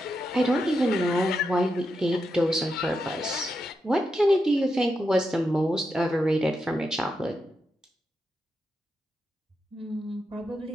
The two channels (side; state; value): both; normal; correlation 0.86